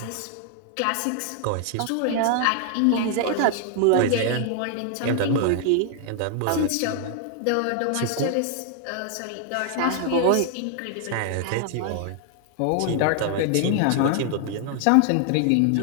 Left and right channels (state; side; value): different; both; correlation 0.00